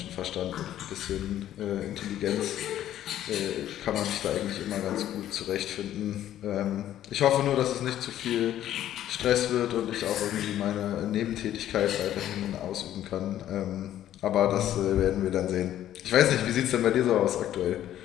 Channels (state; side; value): quieter; right; 12.0 dB